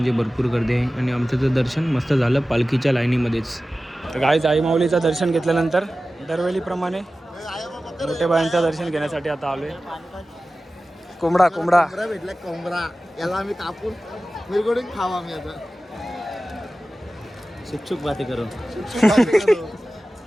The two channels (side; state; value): both; normal; correlation 0.95